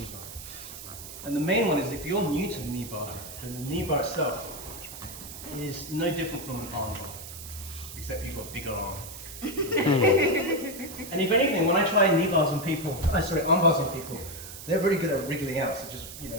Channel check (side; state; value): right; noise; hiss, 12 dB below the sound